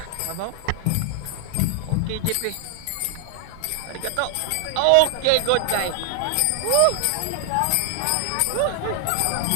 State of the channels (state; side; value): different; both; correlation 0.00